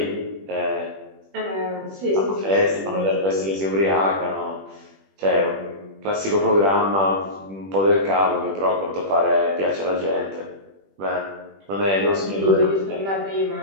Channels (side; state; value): left; late; 21 ms